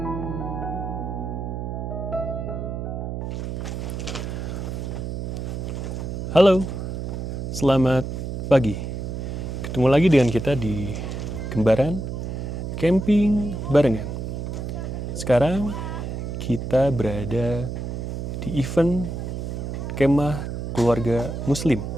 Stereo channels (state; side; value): noise; right; hum, 4 dB below the sound